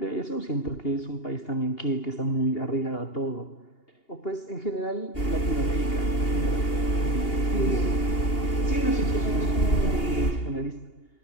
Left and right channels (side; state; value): right; late; 2.8 ms